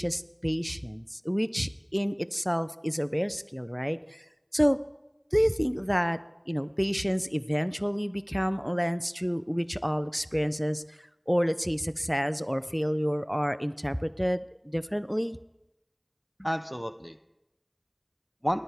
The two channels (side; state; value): both; identical; correlation 1.00